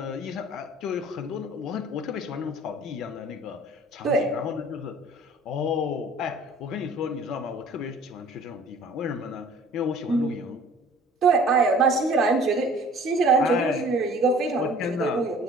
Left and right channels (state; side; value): normal; both; correlation 0.49